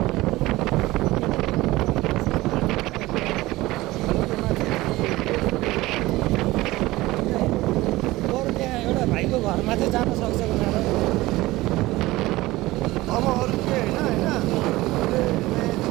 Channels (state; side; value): quieter; left; 18.8 dB